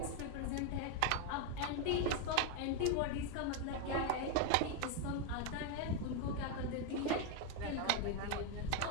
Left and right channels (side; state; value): both; different; correlation 0.02